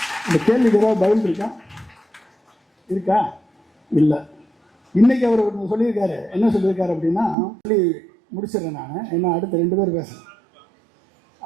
இந்த கேள்விக்கு ஏதாவது பதில் இருக்கா? இல்லை. இன்னைக்கு அவர் சொல்லியிருக்காரு. என்ன சொல்லியிருக்காரு அப்படின்னா, சொல்லி முடிச்சிடறேன் நான், என்ன அடுத்த 2 பேர் பேசுகிறேன்.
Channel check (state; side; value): drops out; left; at 7.4 s